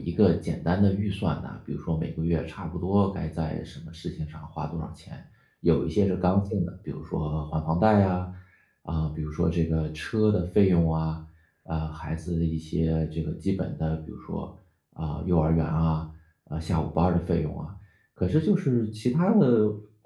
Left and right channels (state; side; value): identical; both; correlation 1.00